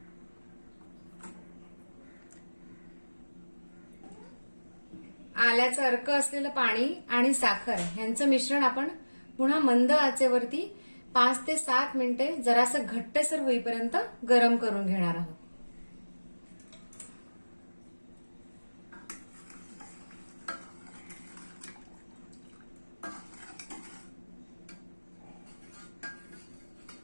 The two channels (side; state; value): both; inverted; correlation -1.00